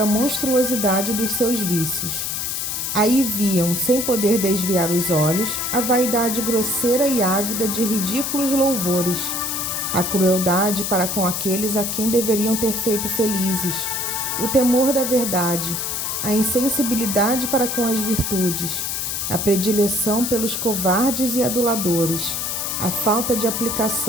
monstruosidade dos seus vícios. Aí viam, sem poder desviar os olhos, a vaidade grosseira e ávida de ridículos louvores, a crueldade para com aqueles a quem deveriam ter feito felizes, o temor da verdade, a insensibilidade para com as virtudes, a predileção pelos covardes e aduladores, a falta de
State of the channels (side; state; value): left; noise; hiss, 2 dB below the sound